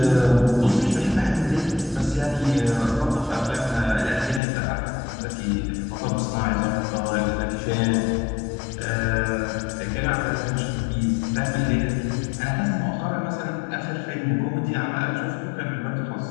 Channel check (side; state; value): right; drops out; at 4.4 s